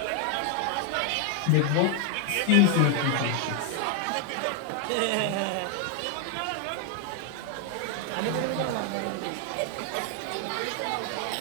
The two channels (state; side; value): different; both; correlation 0.00